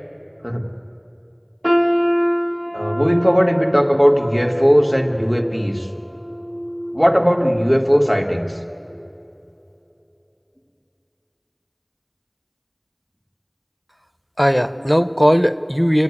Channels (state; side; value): identical; both; correlation 1.00